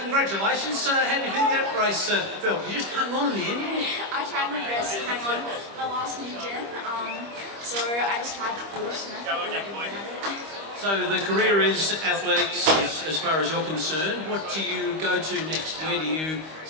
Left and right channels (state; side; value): late; left; 25 ms